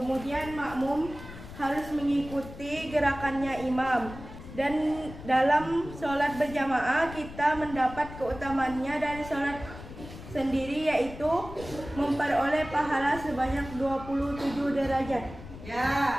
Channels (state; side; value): noise; left; rumble, 14 dB below the sound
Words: makmum harus mengikuti gerakannya imam. Dan dalam sholat berjamaah kita mendapat keutamaannya dari sholat sendiri, yaitu memperoleh pahala sebanyak 27 derajat. Ya,